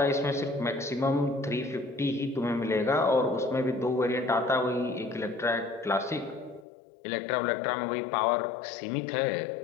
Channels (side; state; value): right; drops out; at 6.7 s